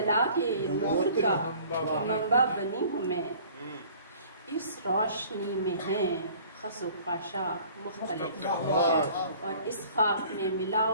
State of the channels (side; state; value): both; inverted; correlation -0.51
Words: کے نور کا منبع بنی ہوں میں، اس روشنی میں ہیں خس و خاشاک مختلف، اور اس خاک میں